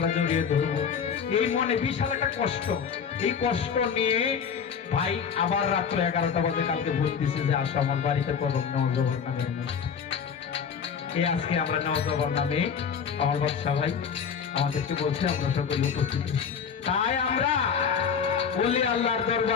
জড়িয়ে ধরবো, এই মনে বিশাল একটা কষ্ট। এই কষ্ট নিয়ে ভাই আবার রাত্র 11টা বাজে কালকে বলতেছে যে আসো আমার বাড়িতে করব নেওয়াজ বাবার নামের অনুষ্ঠান। এই আজকে আমরা নেওয়াজ বাবার নামে আমার বাদশা ভাই আমাদেরকে বলছে আমরা সকলে উপস্থিত। তাই আমরা ওলি আল্লাহর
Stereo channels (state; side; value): quieter; right; 6.9 dB